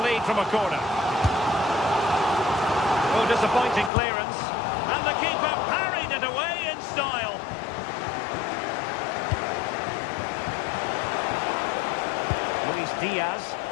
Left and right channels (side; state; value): right; drops out; at 3.9 s